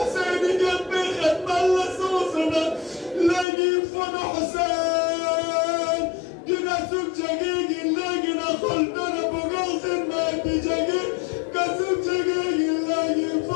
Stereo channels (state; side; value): drops out; right; at 3.5 s